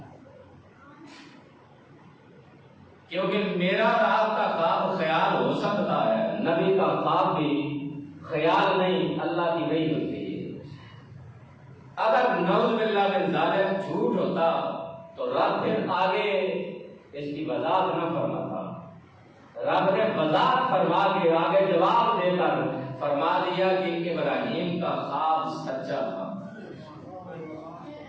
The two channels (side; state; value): both; identical; correlation 1.00